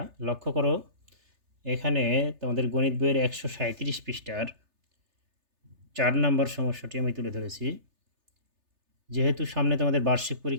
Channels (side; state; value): left; late; 3.3 ms